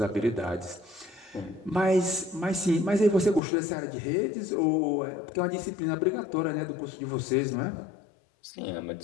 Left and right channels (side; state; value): right; drops out; at 3.4 s